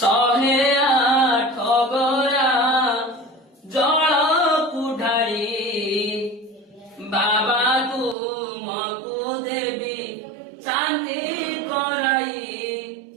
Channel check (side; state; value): left; drops out; at 8.2 s